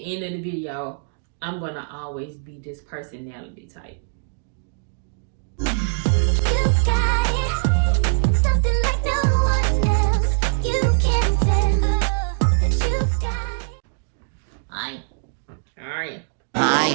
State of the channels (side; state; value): left; silent; digital silence